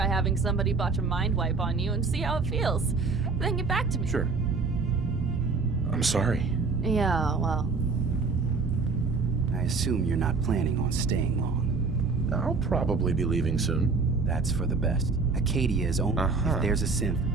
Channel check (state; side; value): quieter; left; 4.4 dB